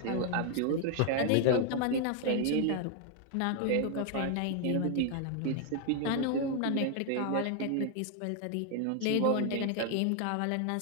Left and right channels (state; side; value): different; both; correlation 0.00